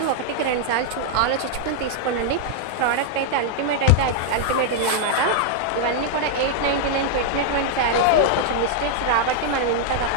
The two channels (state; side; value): different; both; correlation -0.01